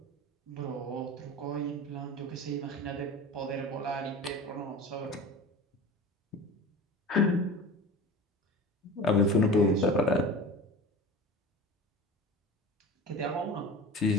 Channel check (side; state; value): both; normal; correlation 0.34